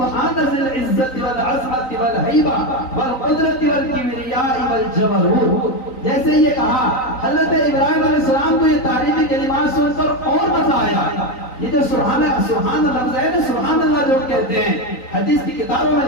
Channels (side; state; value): right; late; 3.9 ms